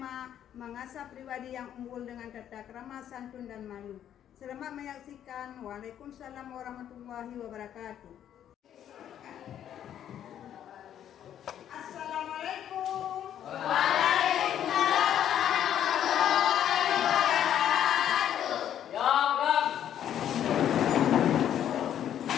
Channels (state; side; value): quieter; right; 10.3 dB